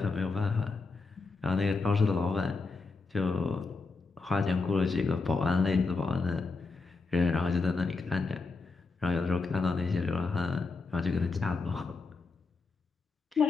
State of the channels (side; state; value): right; quieter; 4.0 dB